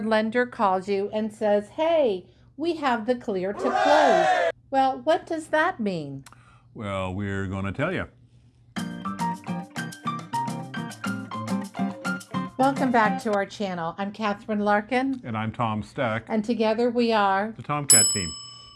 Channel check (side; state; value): both; identical; correlation 1.00